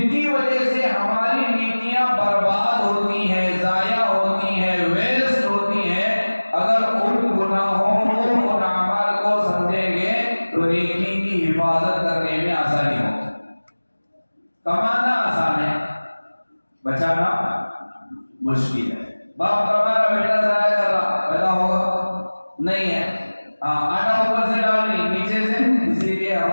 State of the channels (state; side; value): inverted; both; correlation -1.00